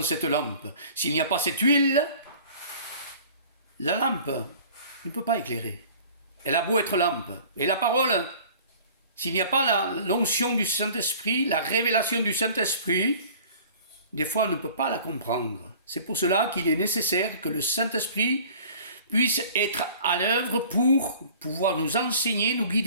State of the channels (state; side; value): inverted; both; correlation -0.47